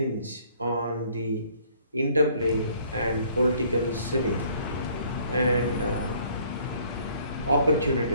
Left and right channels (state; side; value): inverted; both; correlation -0.59